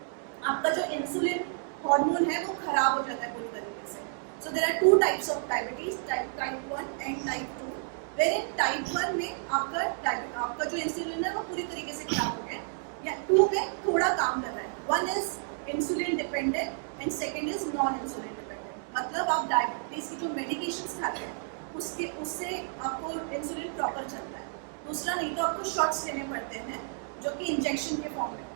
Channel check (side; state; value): left; silent; 57 dB below the other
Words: आपका जो इंसुलिन हार्मोन है वो खराब हो जाता है पूरी तरीके से। So there are two types of diabetes, type 1 and type 2। Where in type 1 में आपका जो इंसुलिन है वो पूरी तरीके से खराब हो गया, या 2 में थोड़ा काम कर रहा है। 1 is insulin dependent and second is non insulin dependent. मतलब आप डायबिटीज़ की जो मेडिकेशंस खाते हैं उससे आपको इंसुलिन प्रॉपर चलता है। दूसरा नहीं तो आपको शॉट्स लेने पड़ते हैं, जो कि इंजेक्शन के फॉर्म में